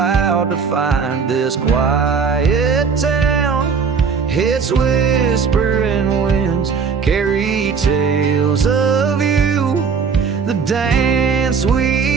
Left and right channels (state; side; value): quieter; left; 5.8 dB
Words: to find. This quiet town, its whispering winds carry tales of you, the dance